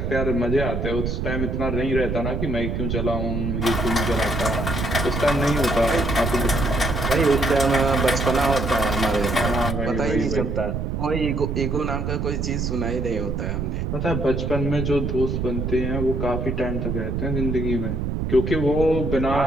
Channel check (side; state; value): right; noise; rumble, 2 dB below the sound